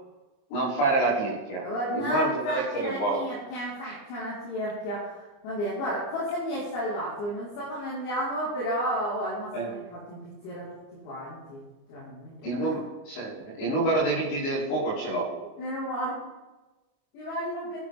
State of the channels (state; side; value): late; right; 29 ms